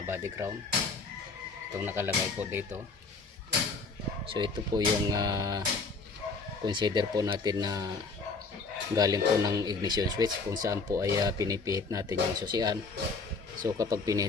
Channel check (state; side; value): quieter; right; 4.2 dB